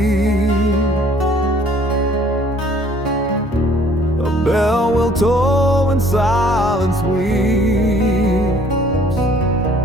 a bell will toll and silence weeps.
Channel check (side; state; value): both; normal; correlation 0.58